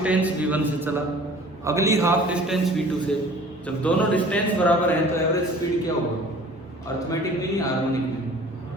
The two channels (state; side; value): normal; both; correlation 0.48